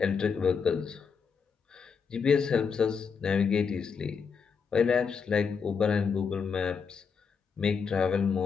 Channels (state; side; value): quieter; right; 5.9 dB